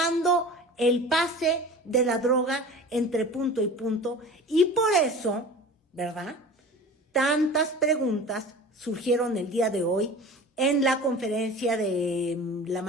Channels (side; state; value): both; normal; correlation 0.38